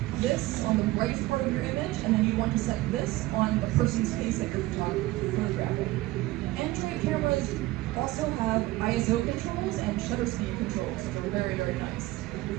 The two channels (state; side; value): quieter; left; 18.4 dB